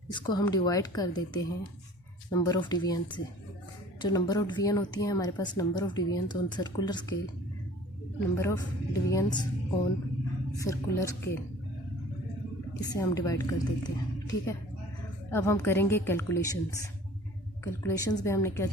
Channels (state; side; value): normal; both; correlation 0.48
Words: इसको हम डिवाइड कर देते हैं नंबर ऑफ डिवीजन से। जो नंबर ऑफ डिवीजन होती है हमारे पास, number of divisions on circular scale, number of divisions on circular scale, इसे हम डिवाइड कर देते हैं, ठीक है। अब हम करेंगे कैलकुलेशंस में हमने क्या